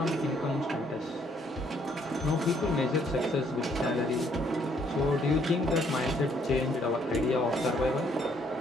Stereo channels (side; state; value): both; normal; correlation 0.67